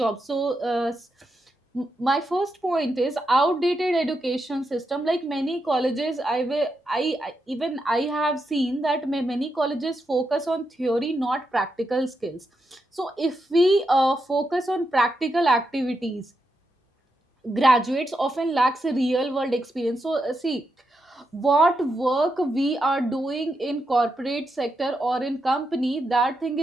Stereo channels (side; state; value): both; normal; correlation 0.84